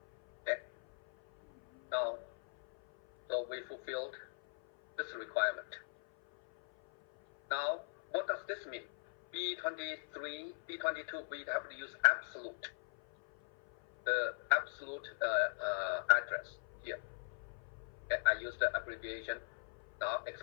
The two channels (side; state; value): right; silent; 52 dB below the other